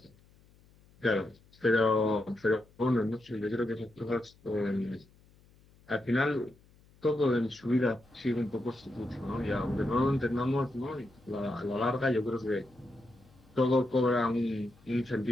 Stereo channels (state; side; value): noise; left; hum, 29 dB below the sound